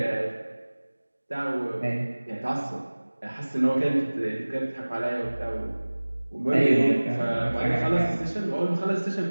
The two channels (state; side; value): inverted; both; correlation -1.00